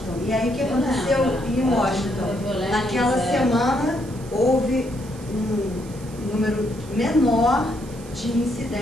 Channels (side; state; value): right; noise; hiss, 21 dB below the sound